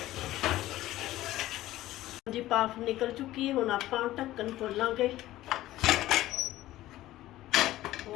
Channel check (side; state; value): right; quieter; 15.5 dB